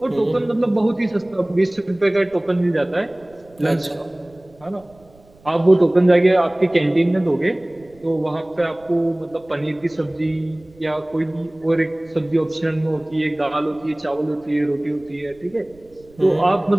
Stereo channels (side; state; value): right; noise; rumble, 28 dB below the sound